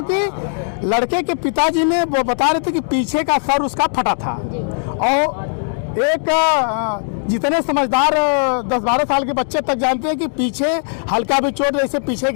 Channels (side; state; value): right; silent; 63 dB below the other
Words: लड़के के पिताजी ने वो बता रहे थे कि पीछे का सर उसका फटा था। और एक जितने समझदार 10-12 साल के बच्चे तक जानते हैं कि पीछे हल्का भी चोट, जैसे पीछे